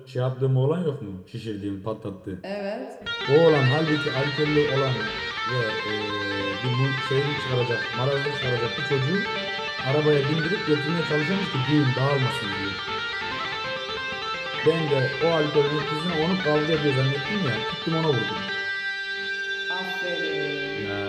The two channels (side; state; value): both; identical; correlation 1.00